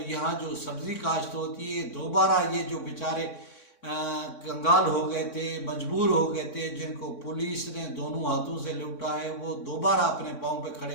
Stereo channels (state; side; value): late; right; 3.6 ms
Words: یہاں جو سبزی کاشت ہوتی ہے، دوبارہ یہ جو بیچارے کنگال ہو گئے تھے، مجبور ہو گئے تھے، جن کو پولیس نے دونوں ہاتھوں سے لوٹا ہے، وہ دوبارہ اپنے پاؤں پہ